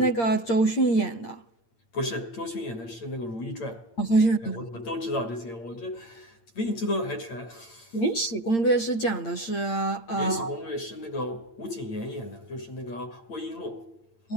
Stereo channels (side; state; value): right; late; 8.7 ms